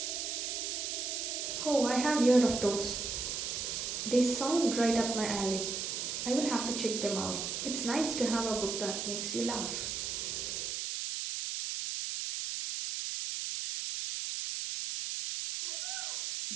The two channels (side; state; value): right; noise; hiss, 3 dB below the sound